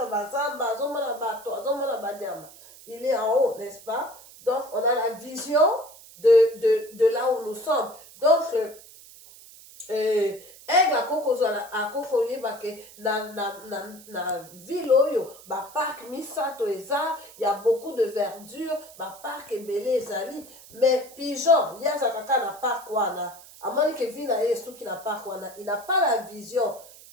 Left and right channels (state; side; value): noise; right; hiss, 20 dB below the sound